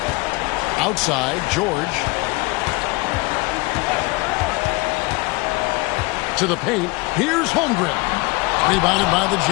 Outside, George. To the paint. Here's Holmgren. Rebounded by the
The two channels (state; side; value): quieter; right; 25.4 dB